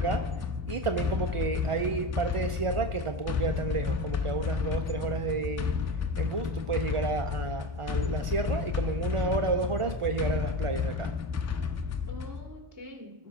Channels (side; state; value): left; late; 1.4 ms